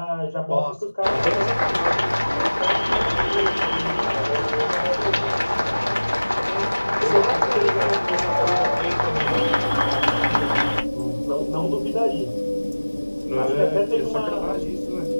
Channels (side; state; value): both; inverted; correlation -1.00